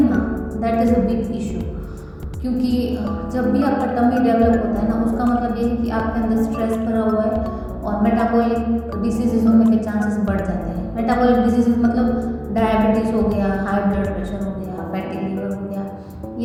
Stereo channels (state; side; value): identical; both; correlation 1.00